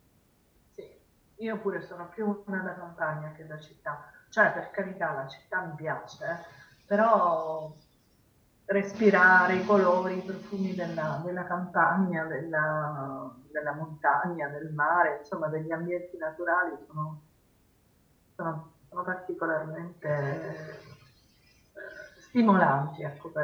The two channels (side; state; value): both; identical; correlation 1.00